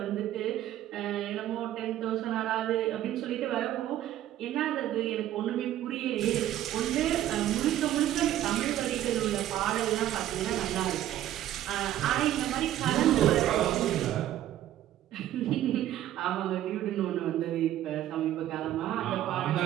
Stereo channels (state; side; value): quieter; left; 12.7 dB